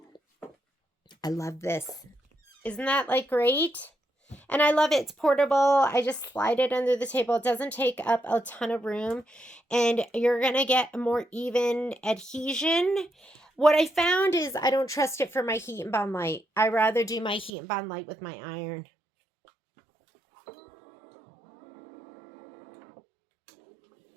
I love this. Isn't that like great? And I love it. It's portable. I just slide it under the table. It doesn't take up a ton of room. And you're going to get a more even adhesion. What I found is I don't trust it for my heat and bond light. I rather do my heat and bond light with my iron.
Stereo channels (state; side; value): drops out; left; at 17.5 s